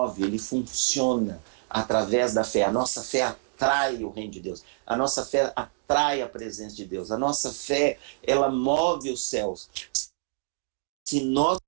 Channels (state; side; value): silent; left; digital silence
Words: ele funciona através da fé. A nossa fé atrai o reino de Deus. A nossa fé atrai a presença de Deus. A nossa fé, ela move os céus. Se nós